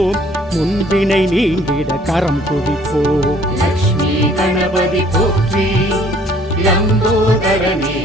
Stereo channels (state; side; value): normal; both; correlation 0.58